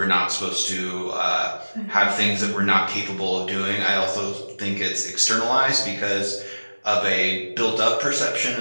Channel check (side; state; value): both; inverted; correlation -1.00